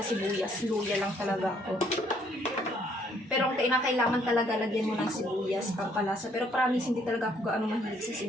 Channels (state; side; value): normal; both; correlation 0.66